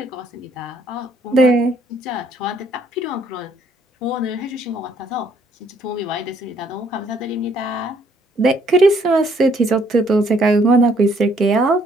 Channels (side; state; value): both; normal; correlation 0.66